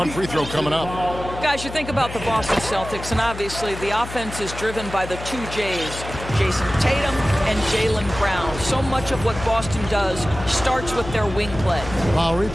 free throw coming up. Guys, you think about the Boston Celtics, and obviously the offense is driven by the 2 J's, Jason Tatum and Jaylen Brown. So much of what Boston does starts with their wing play. Lowry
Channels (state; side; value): noise; left; hum, 10 dB below the sound